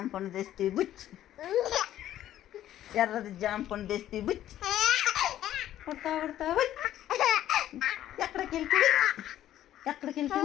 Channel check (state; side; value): quieter; right; 12.4 dB